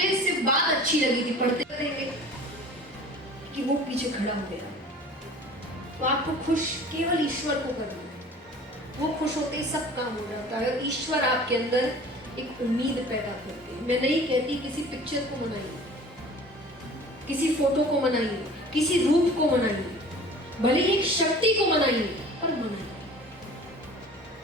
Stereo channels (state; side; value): normal; both; correlation 0.44